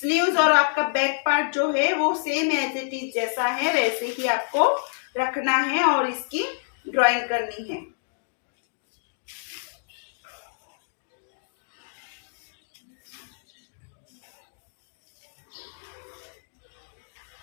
और आपका बैक पार्ट जो है वो सेम एज इट इज जैसा है वैसे ही आपको रखना है और इसकी ड्राइंग करनी है।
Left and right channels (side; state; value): right; silent; digital silence